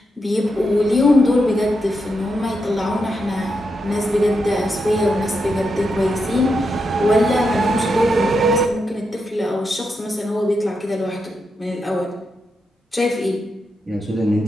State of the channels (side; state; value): both; normal; correlation 0.84